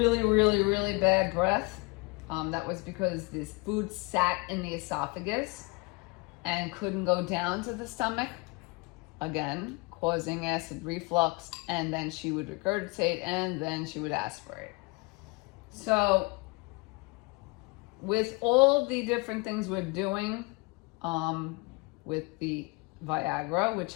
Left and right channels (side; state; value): right; quieter; 27.7 dB